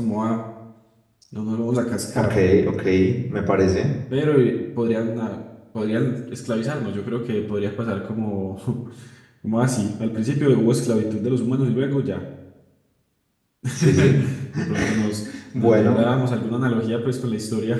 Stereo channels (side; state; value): both; identical; correlation 1.00